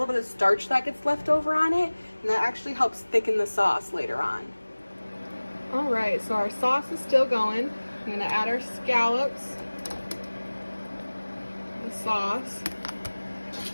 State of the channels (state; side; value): inverted; both; correlation -1.00